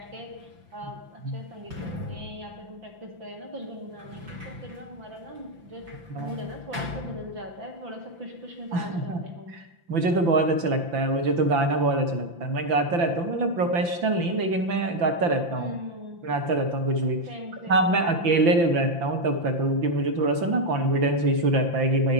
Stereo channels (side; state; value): left; late; 5.9 ms